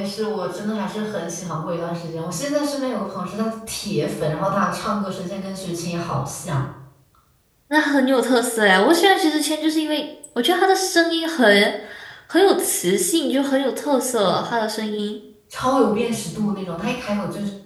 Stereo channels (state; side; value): identical; both; correlation 1.00